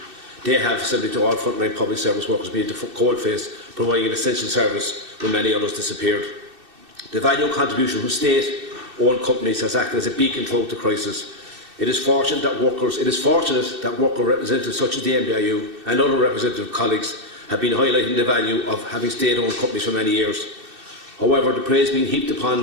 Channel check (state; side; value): late; left; 2.6 ms